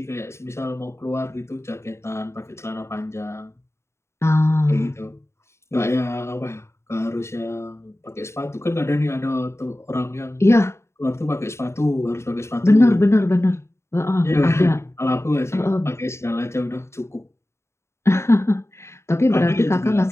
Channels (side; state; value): right; late; 0.13 ms